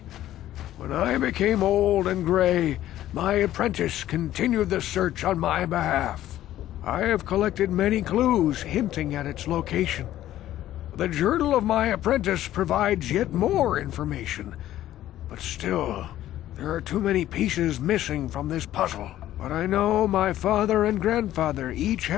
When I became old and gray, my apprentice continued the search on my behalf. I have collected many clues hinting at its location. The journal of my apprentice provides yet more information. But still, there are too many pieces missing from this puzzle. But I know my father and grandfather each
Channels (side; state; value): right; quieter; 13.3 dB